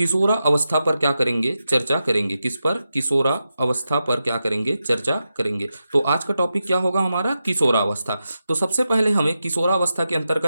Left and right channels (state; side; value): inverted; both; correlation -0.89